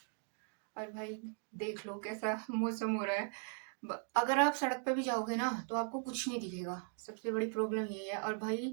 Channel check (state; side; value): silent; left; 52 dB below the other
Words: और भाई देख लो कैसा मौसम हो रहा है। अगर आप सड़क पे भी जाओगे ना तो आपको कुछ नहीं दिखेगा। सबसे बड़ी प्रॉब्लम यही है। और भाई